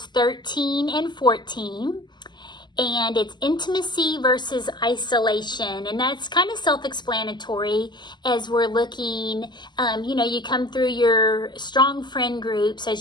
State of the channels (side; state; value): right; late; 0.21 ms